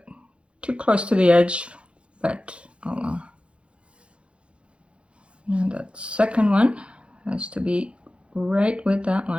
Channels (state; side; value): late; left; 0.059 ms